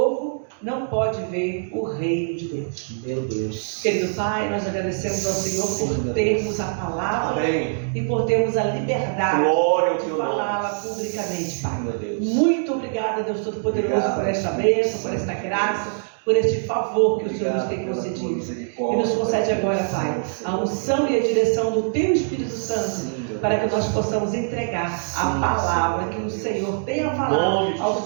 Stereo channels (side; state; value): left; silent; digital silence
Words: não pode ver o reino de Deus. Meu Deus. Querido Pai, nós agradecemos ao Senhor por termos a palavra. Amém. E por termos a liberdade Glória ao de teu falá-la nome. publicamente, Pai. Meu Deus. Muito obrigada, Deus Todo-Poderoso, Obrigado. por esta bênção, por esta graça, por este favor que o Senhor nos Obrigado tem pela tua concedido. misericórdia. E nos concede agora, Pai, a unção e a direção do Teu Espírito Santo, Sim, meu para que Deus. nós possamos entregar Sim, a palavra Senhor. que o Senhor tem a Nome falar de aos